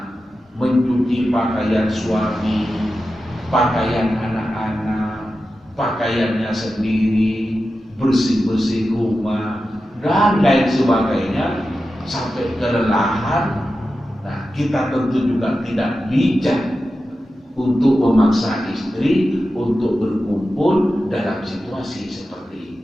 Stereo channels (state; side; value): normal; both; correlation 0.92